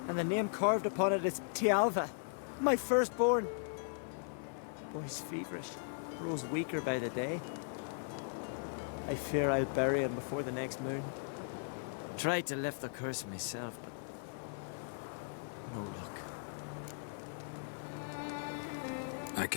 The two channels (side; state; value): right; silent; 52 dB below the other